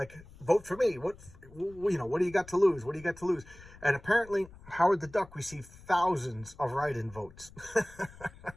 vote for me. What do you got to lose? What do you got to lose? And apparently Howard the Duck received thousands of write-in votes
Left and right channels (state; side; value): noise; left; rumble, 21 dB below the sound